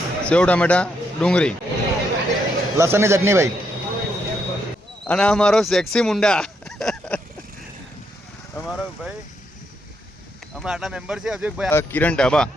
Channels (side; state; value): both; normal; correlation 0.78